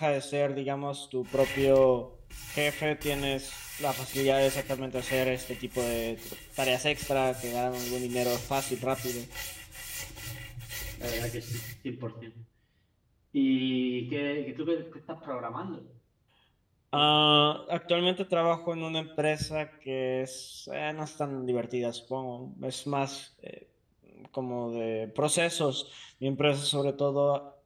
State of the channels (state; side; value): identical; both; correlation 1.00